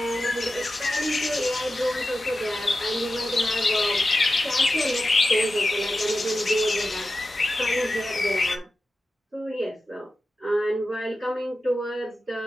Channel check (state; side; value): normal; both; correlation 0.92